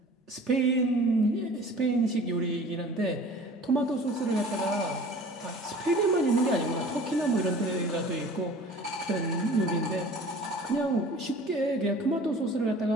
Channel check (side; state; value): both; normal; correlation 0.45